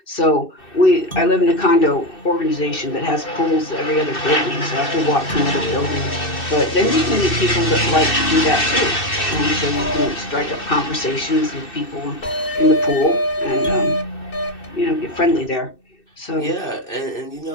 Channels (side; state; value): right; late; 2.6 ms